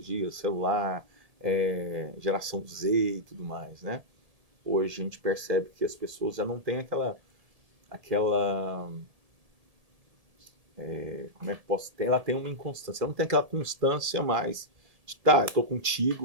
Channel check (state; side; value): late; left; 1.7 ms